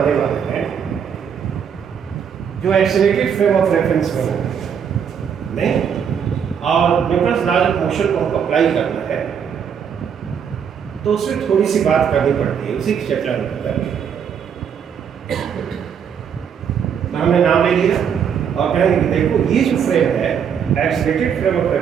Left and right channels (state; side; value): quieter; left; 7.6 dB